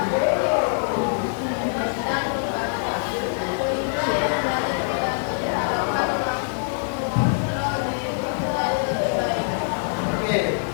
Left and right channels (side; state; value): right; silent; 63 dB below the other